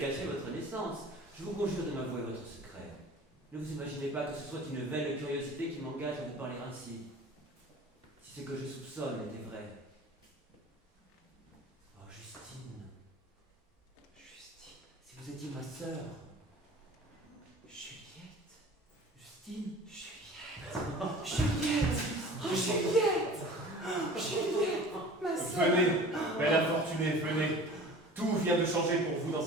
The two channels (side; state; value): both; normal; correlation 0.42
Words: votre naissance. Je vous conjure de m'avouer votre secret. Ne vous imaginez pas que ce soit une vaine curiosité qui m'engage à vous parler ainsi. Si ce que je soupçonne était vrai. Oh, Justine. Justine, Si vous étiez ma sœur. Juliette, Justine. Juliette, Juliette, oh Juliette, Juliette, ma sœur. Venez, belle infortunée, venez. Tout vient de changer pour vous